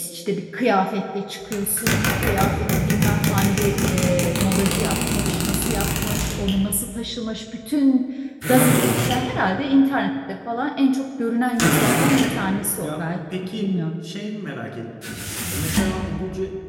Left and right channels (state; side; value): identical; both; correlation 1.00